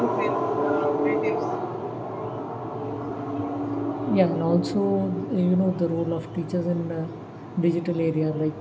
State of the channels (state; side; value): identical; both; correlation 1.00